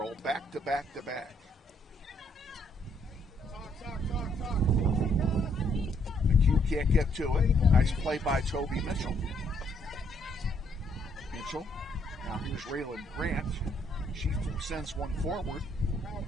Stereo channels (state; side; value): normal; both; correlation 0.70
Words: back to back to back. McHugh can't get to it. Nice play by Toby Mitchell. Now here's Raylan Grant. She sends one forward.